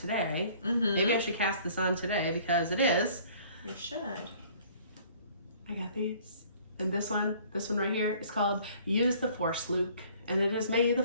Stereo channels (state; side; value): inverted; both; correlation -0.54